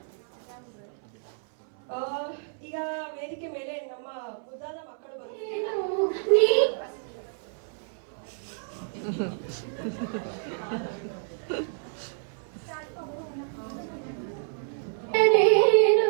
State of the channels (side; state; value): left; silent; 59 dB below the other